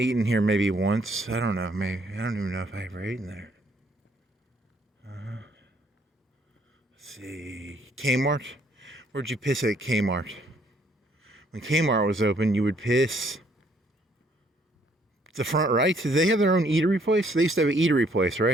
in here maybe once. I don't know. Maybe. I don't even know if I ever ate in there. see, Kmart. Where'd you piss at Kmart? When Kmart was open, you would piss the front right. Did they have their own eatery place? They used to have an eatery place,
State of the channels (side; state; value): both; normal; correlation 0.66